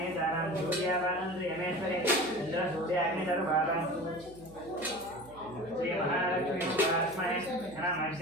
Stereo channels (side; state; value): right; noise; hum, 20 dB below the sound